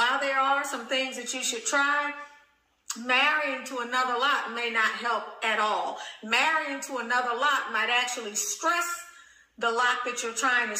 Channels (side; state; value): both; identical; correlation 1.00